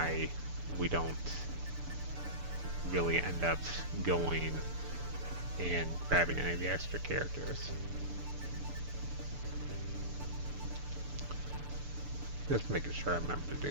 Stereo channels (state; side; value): late; left; 6.9 ms